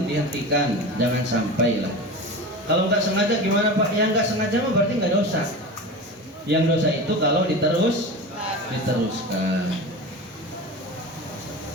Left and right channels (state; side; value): normal; both; correlation 0.29